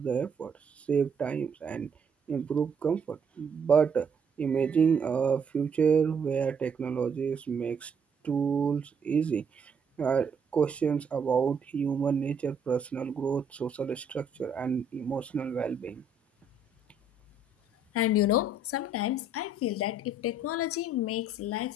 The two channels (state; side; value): quieter; left; 3.1 dB